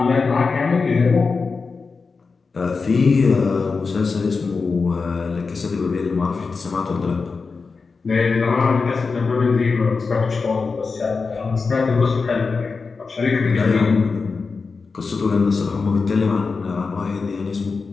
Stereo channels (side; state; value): right; quieter; 4.6 dB